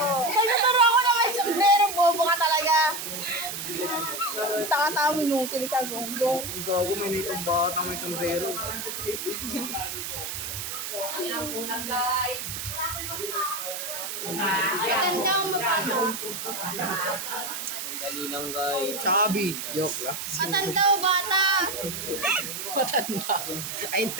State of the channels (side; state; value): right; noise; hiss, 5 dB below the sound